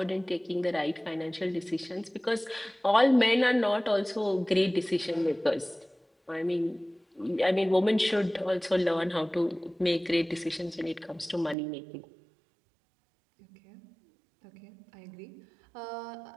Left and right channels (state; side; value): drops out; left; at 11.6 s